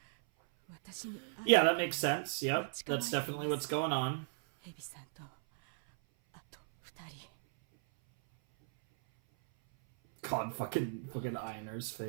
私に会い Yeah, that makes sense. Yep. That's definitely what's going on. ヘビさんとあと二人。 God, fucking Einer's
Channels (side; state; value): left; silent; 54 dB below the other